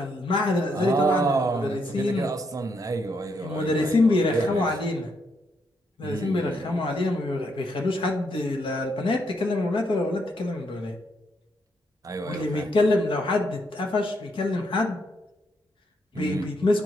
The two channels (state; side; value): normal; both; correlation 0.76